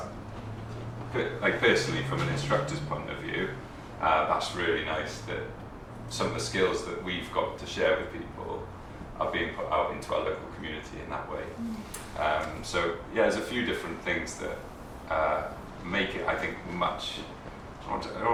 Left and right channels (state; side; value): identical; both; correlation 1.00